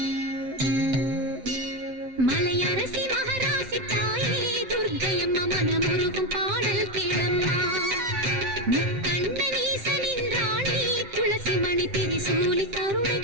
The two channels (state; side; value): late; left; 7.6 ms